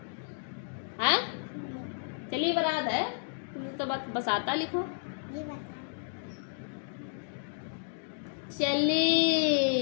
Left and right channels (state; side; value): silent; right; digital silence